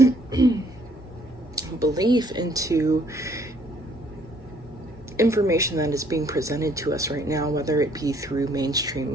belief into information that is being presented to us right now, whether it be through mainstream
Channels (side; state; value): both; normal; correlation 0.63